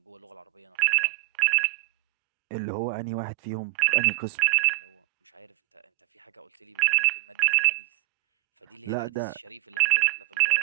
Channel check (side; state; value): left; quieter; 27.7 dB